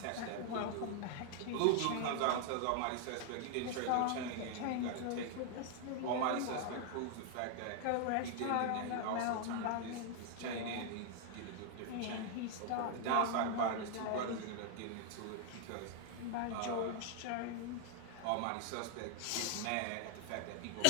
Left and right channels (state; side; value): different; both; correlation 0.00